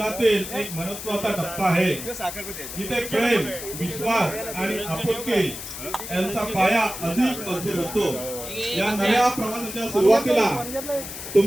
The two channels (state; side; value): noise; left; hiss, 9 dB below the sound